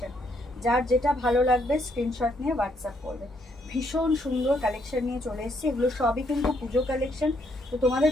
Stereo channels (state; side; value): normal; both; correlation 0.72